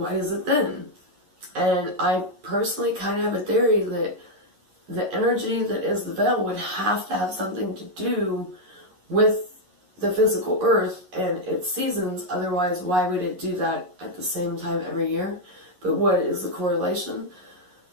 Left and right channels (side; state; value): left; late; 11 ms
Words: is it thin? And I personally kind of have a theory that the energy that is the veil would have to have something to do with the physical earth and its seasons. Otherwise, why would it do that at the same time every year? But what is the correlation?